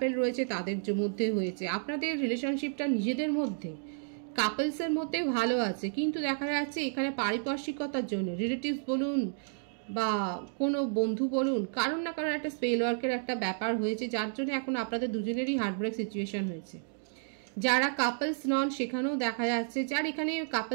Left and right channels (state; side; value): silent; left; digital silence